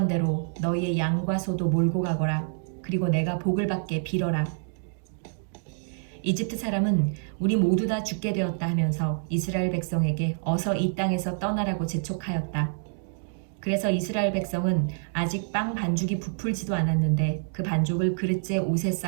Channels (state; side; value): silent; left; digital silence